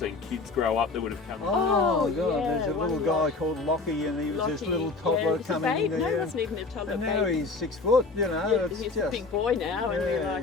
kids grow up that would have come. Oh God, there's a little guy called Lockie, and he was this little toddler coming in there. No, he wasn't even a toddler. And now he's 6 foot, he's a big boy now, and we're like,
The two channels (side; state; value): right; quieter; 3.9 dB